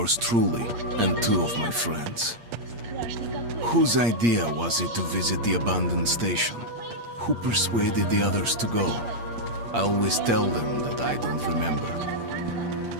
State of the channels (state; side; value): late; left; 8.6 ms